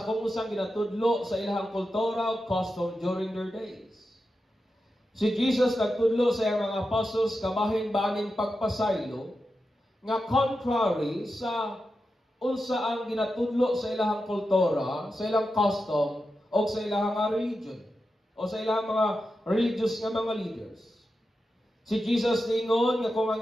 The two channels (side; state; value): both; normal; correlation 0.90